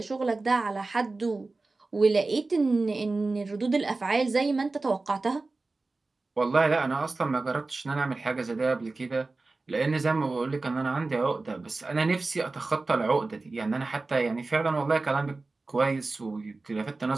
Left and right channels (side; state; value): left; quieter; 3.5 dB